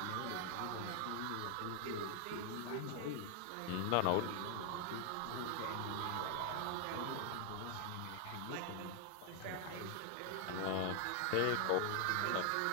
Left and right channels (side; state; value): both; different; correlation 0.00